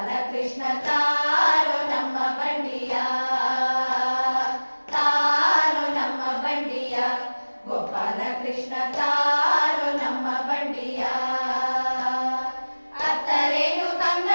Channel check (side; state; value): both; inverted; correlation -1.00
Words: ಕೃಷ್ಣ ತಾರೋ ನಮ್ಮ ಬಂಡಿಯ ತಾರೋ ನಮ್ಮ ಬಂಡಿಯ ಗೋಪಾಲ ಕೃಷ್ಣ ತಾರೋ ನಮ್ಮ ಬಂಡಿಯ ಅತ್ತರೇನು